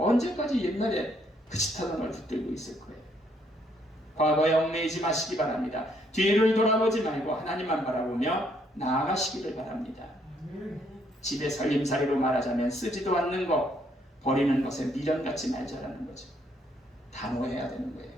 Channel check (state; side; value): normal; both; correlation 0.70